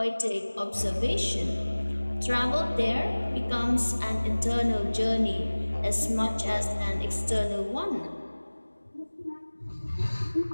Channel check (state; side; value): inverted; both; correlation -1.00